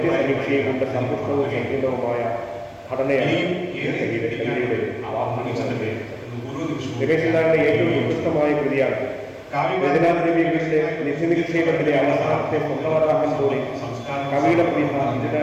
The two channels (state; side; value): identical; both; correlation 1.00